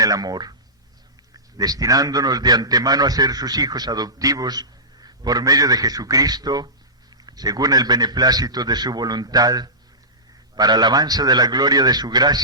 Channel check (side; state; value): both; normal; correlation -0.20